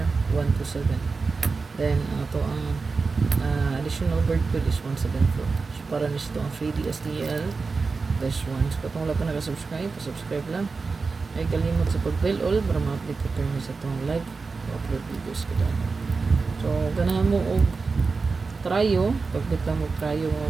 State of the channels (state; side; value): quieter; left; 4.4 dB